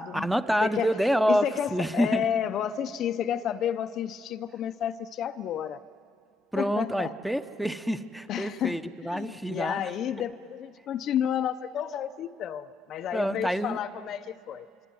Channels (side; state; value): right; quieter; 3.0 dB